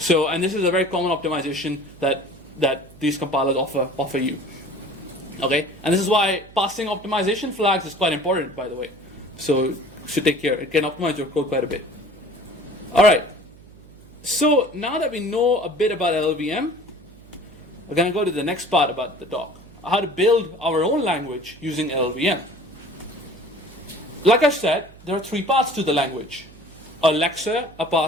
and this is a very common optimization that these compilers offer you. Okay, and this is why passing optimization flags is quite important, by the way. So you should take care. It can optimize your code quite a bit. All right. So now that we know a bit about LLVM, we're going to go to the next part about the talk. How to build our own language using LLVM. Like I said, there are three parts to the language. A lexer, a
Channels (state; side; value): noise; right; hum, 22 dB below the sound